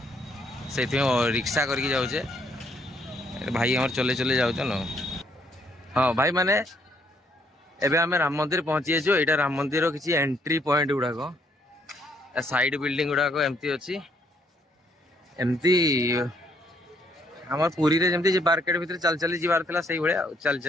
से रिक्शा करके जाऊे भाई आम चले चले जाऊँ न। हाँ भाई माने एबे आम राम मंदिर पहुँची जाइए। यहाँ राम मंदिर किसी एंट्री पॉइंट गुड़ाक साइड बिल्डिंग गुड़ाक एमती अच्छी एमती आम पुरी रे जमती मार्केट भीतर चल चली जीवार था से भाया चल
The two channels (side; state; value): both; normal; correlation 0.69